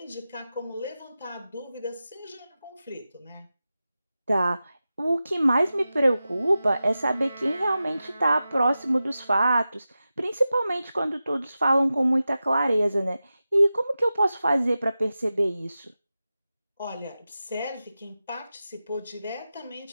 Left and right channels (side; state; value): both; inverted; correlation -0.93